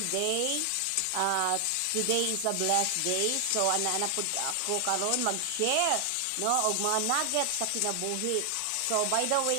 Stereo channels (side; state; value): both; different; correlation 0.00